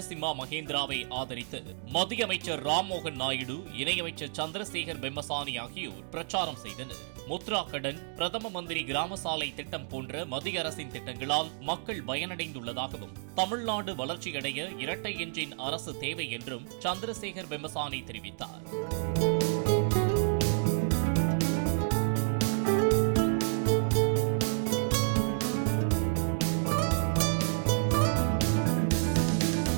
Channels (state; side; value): silent; left; digital silence